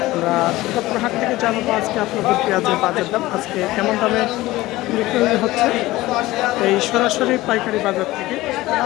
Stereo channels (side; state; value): right; quieter; 18.0 dB